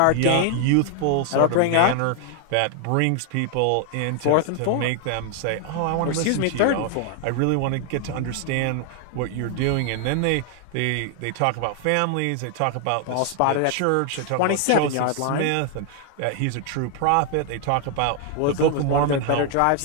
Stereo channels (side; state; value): both; different; correlation 0.00